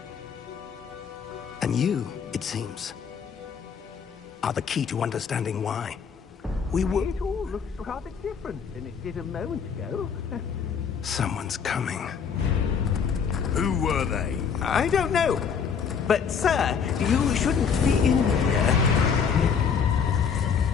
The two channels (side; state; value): right; quieter; 6.7 dB